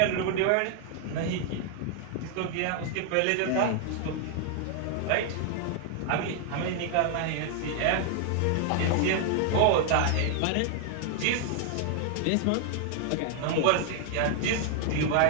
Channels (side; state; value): both; different; correlation 0.00